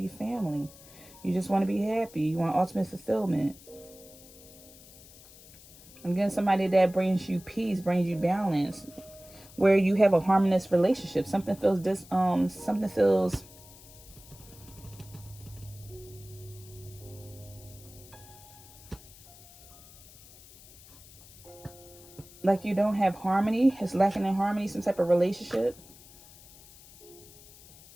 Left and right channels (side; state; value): left; noise; hiss, 21 dB below the sound